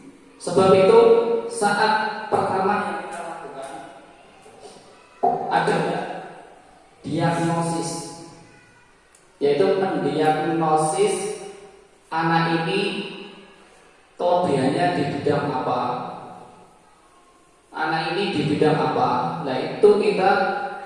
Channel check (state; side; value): identical; both; correlation 1.00